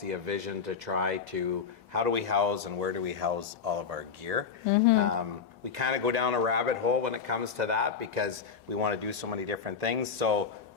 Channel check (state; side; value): quieter; right; 6.1 dB